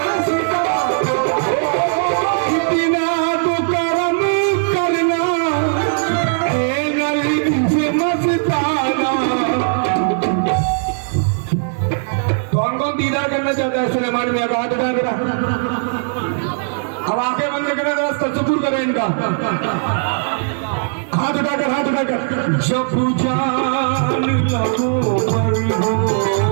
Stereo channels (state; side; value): silent; left; digital silence